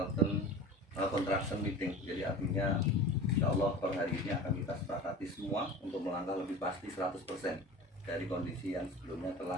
Contraction Meeting. Jadi artinya insya Allah per hari ini akan kita sepakati semua untuk melangkah lebih pasti 100% dari kondisi yang sebelumnya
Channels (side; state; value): both; normal; correlation 0.35